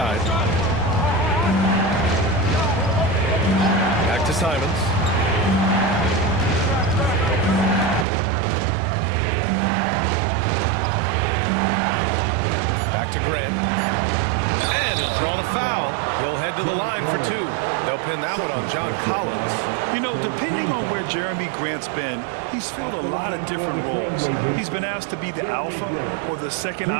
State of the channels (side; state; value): left; drops out; at 8.1 s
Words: Back to Simons. to the line for two. They'll pin that one on John Collins. You know, depending on where Jeremy Grant's been, he's filled a lot of different roles. He's been asked to be the alpha or the second